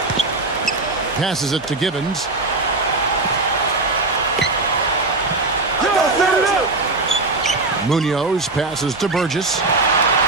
Passes it to Givens. Munoz passes to Burgess.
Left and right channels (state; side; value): quieter; left; 3.3 dB